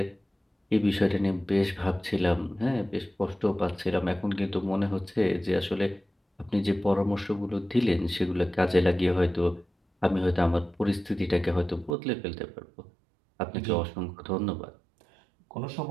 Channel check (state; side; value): drops out; left; at 12.0 s